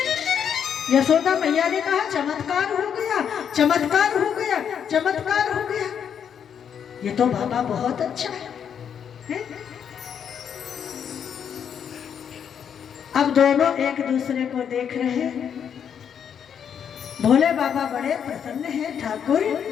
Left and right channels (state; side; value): quieter; right; 8.1 dB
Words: यशोदा मैया ने कहा चमत्कार हो गया, चमत्कार हो गया, चमत्कार हो गया। ये तो बाबा बहुत अच्छा है। अब दोनों एक दूसरे को देख रहे हैं। भोले बाबा बड़े प्रसन्न हैं। ठाकुर